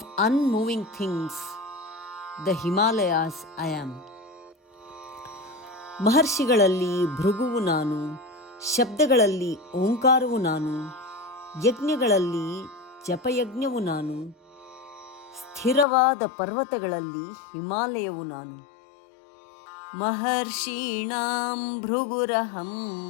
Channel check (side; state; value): right; drops out; at 15.9 s